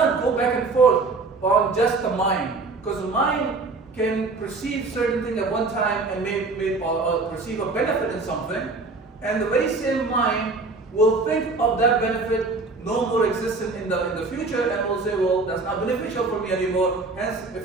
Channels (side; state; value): left; quieter; 3.7 dB